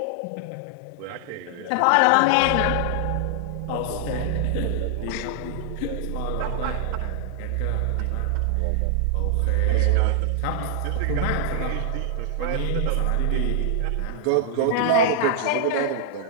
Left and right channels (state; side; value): different; both; correlation -0.01